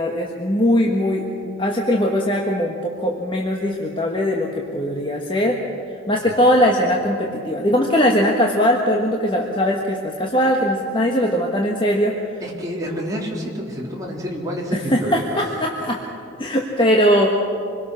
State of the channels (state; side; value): normal; both; correlation 0.45